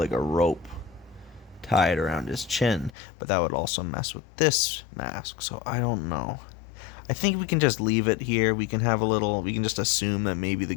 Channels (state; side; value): drops out; right; at 3.0 s